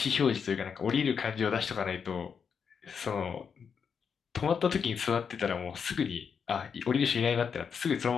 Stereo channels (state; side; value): quieter; right; 6.6 dB